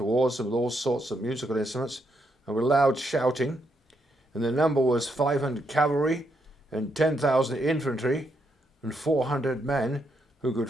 them with all sorts of musical instruments, and with loud shouting. And the number was 500 cavalry, and 10,000 infantry, and 400 men who could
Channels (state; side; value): normal; both; correlation 0.78